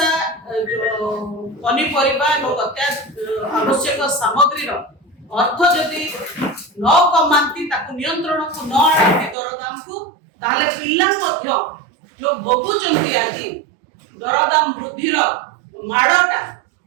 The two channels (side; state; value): left; drops out; at 9.3 s